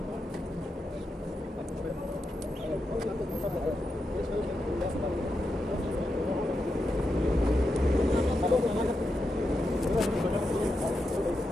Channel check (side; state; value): both; normal; correlation 0.86